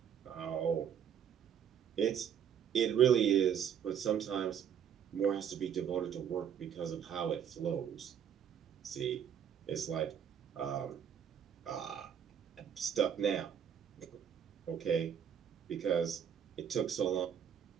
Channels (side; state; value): left; quieter; 8.4 dB